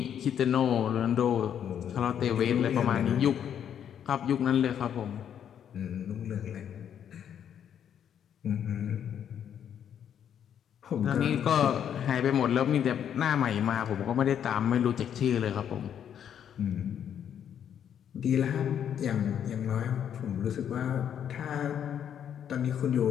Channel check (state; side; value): quieter; right; 9.1 dB